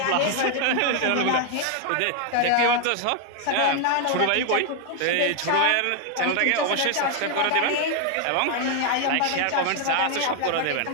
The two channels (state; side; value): different; both; correlation 0.01